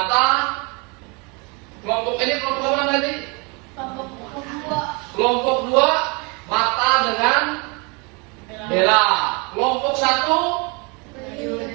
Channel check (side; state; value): left; quieter; 30.3 dB